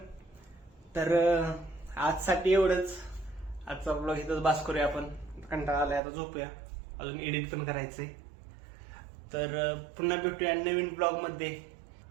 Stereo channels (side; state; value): left; drops out; at 6.0 s